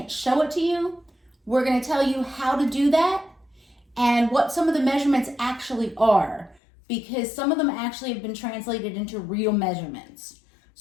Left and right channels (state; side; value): drops out; right; at 6.6 s